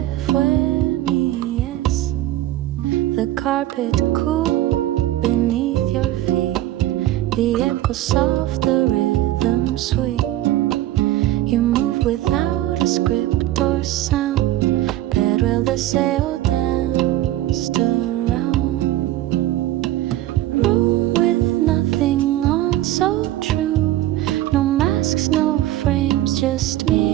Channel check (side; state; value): left; quieter; 14.6 dB